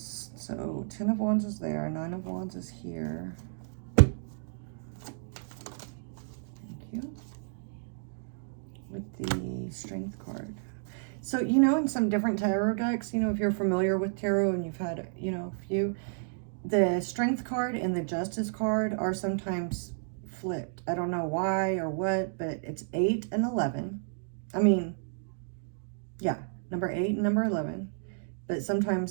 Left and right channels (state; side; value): silent; left; digital silence